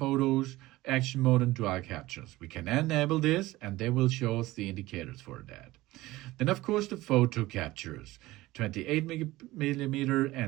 action mode, and dual captures. We can enable this, and they will show us the indicators for that. Then, of course, the photo captures, 28mm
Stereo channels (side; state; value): left; quieter; 18.2 dB